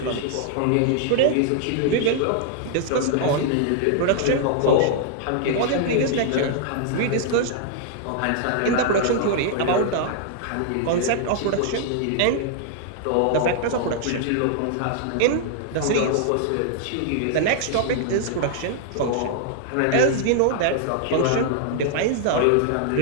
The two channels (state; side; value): different; both; correlation -0.01